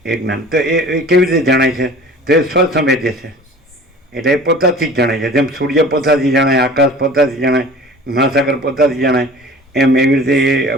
એ જ્ઞાન. તો એ કેવી રીતે જણાય છે? તો એ સ્વસંવેદ્ય છે, એટલે એ પોતાથી જ જણાય છે. જેમ સૂર્ય પોતાથી જણાય, આકાશ પોતાથી જણાય, મહાસાગર પોતાથી જણાય, એમ એવી રીતે એ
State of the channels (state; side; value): normal; both; correlation 0.44